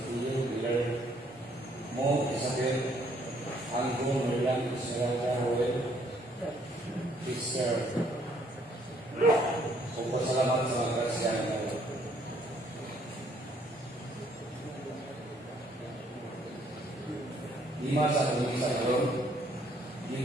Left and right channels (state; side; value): normal; both; correlation 0.65